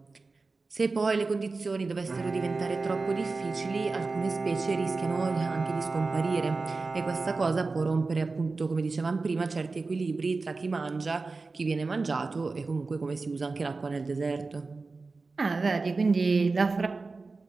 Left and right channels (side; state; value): left; quieter; 3.9 dB